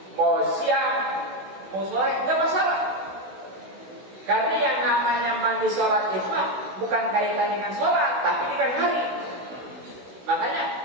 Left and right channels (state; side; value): late; left; 16 ms